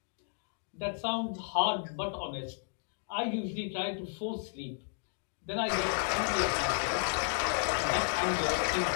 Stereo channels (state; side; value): silent; right; digital silence